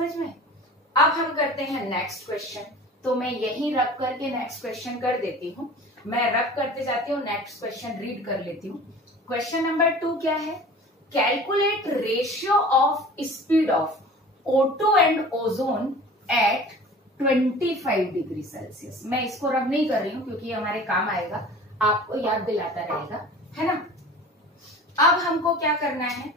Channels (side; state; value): both; normal; correlation 0.41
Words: में। अब हम करते हैं नेक्स्ट क्वेश्चन। तो मैं यहीं रख करके नेक्स्ट क्वेश्चन कर देती हूँ, मैं रख करते जाती हूँ, नेक्स्ट क्वेश्चन रीड कर लेती हूँ। क्वेश्चन नंबर 2 क्या है, calculate ratio of speed of O2 and ozone at 25 degree Celsius. मैं इसको रब नहीं कर रही हूँ क्योंकि हमारे काम आएगा, आपको याद दिलाता रहेगा, है ना। अब हमको क्या करना है,